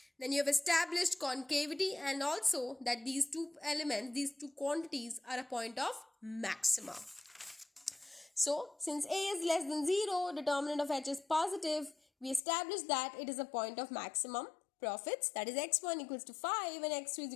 Then you have established concavity and also that these two elements, these two quantities are a point of maxima. So since A is less than 0, determinant of H is positive, we established that it is a point of maximum profits. That is x1 equals to 5 and x2 is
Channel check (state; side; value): drops out; right; at 12.4 s